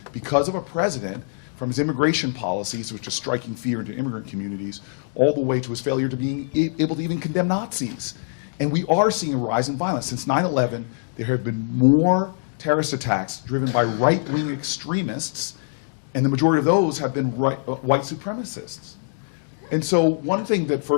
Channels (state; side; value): silent; right; digital silence